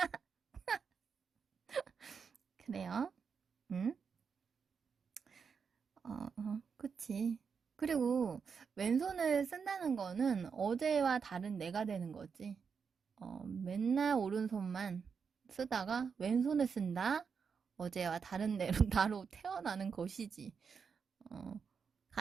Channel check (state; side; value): quieter; left; 6.0 dB